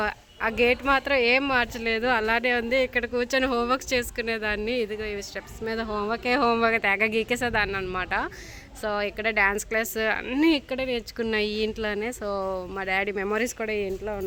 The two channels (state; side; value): identical; both; correlation 1.00